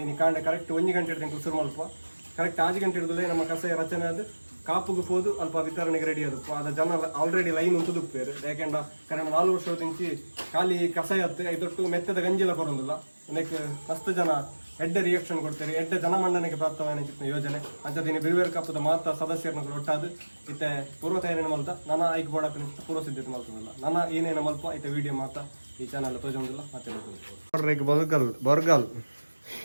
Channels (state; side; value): inverted; both; correlation -1.00